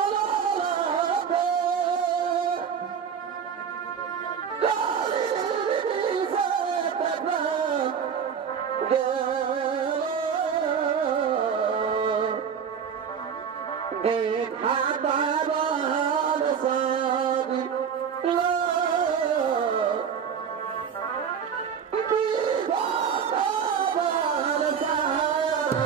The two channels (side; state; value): left; quieter; 7.2 dB